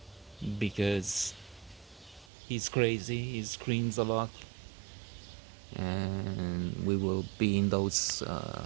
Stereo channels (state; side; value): drops out; left; at 2.2 s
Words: because he's crazy, he screams a lot, and we will be in those